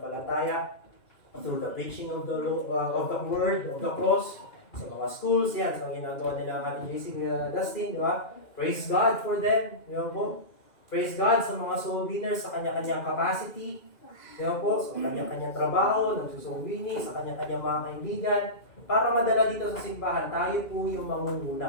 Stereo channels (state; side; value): late; right; 2.4 ms